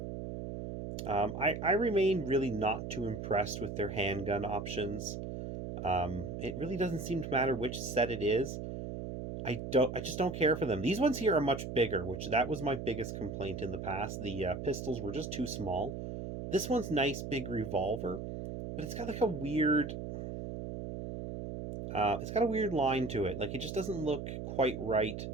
I remain really not too impressed with their handgun options. It really doesn't seem to matter which set it is. I just don't care for them. These ones here are much bigger, which that was my biggest complaint in the past. The pistols were just too small. This one's nice, big revolver, but it's got like a weird... it's got a weird line to it. Like, it just doesn't look quite right.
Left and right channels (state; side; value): noise; right; hum, 6 dB below the sound